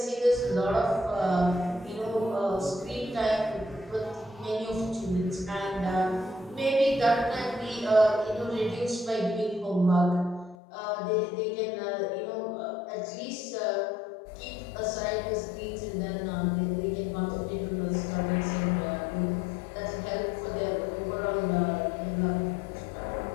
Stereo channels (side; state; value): right; drops out; at 10.6 s